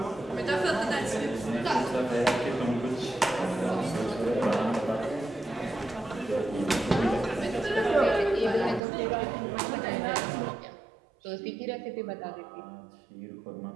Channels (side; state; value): left; drops out; at 8.8 s